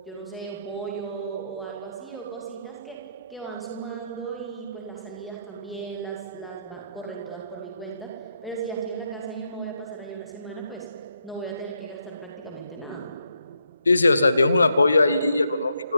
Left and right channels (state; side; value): inverted; both; correlation -0.78